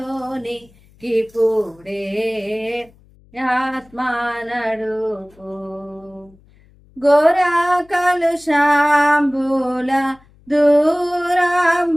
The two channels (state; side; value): noise; left; hum, 29 dB below the sound